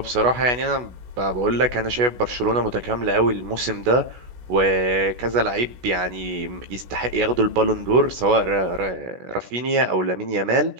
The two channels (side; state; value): left; late; 16 ms